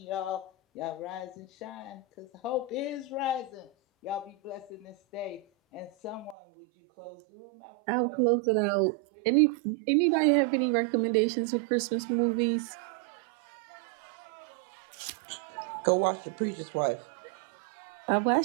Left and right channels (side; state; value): left; drops out; at 6.4 s